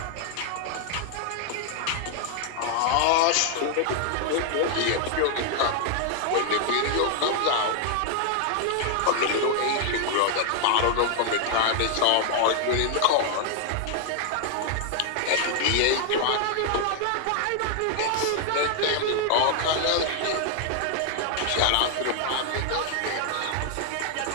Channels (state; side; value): different; both; correlation 0.00